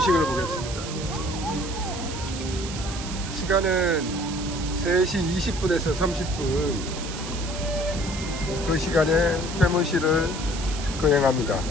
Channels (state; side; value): noise; right; hiss, 10 dB below the sound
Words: 보겠습니다. 시간은 3시 20분에서 30분. 그 시간에 해문식을 거행합니다.